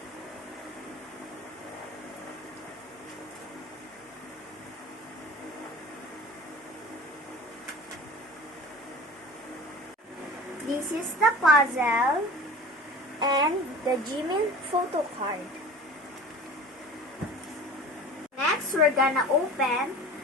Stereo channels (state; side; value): normal; both; correlation 0.38